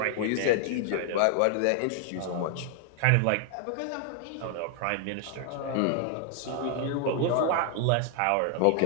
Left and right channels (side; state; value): both; different; correlation 0.00